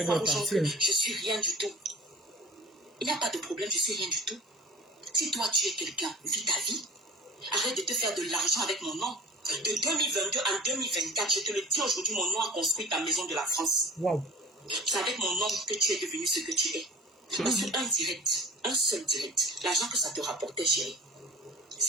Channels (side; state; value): both; normal; correlation 0.41